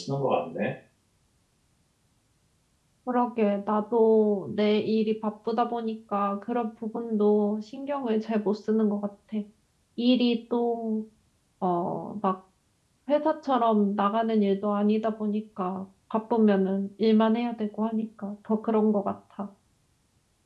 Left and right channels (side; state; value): both; identical; correlation 1.00